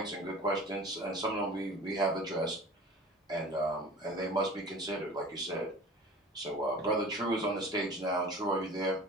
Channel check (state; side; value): normal; both; correlation 0.41